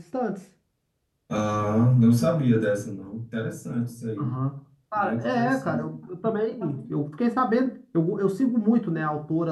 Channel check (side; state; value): both; identical; correlation 1.00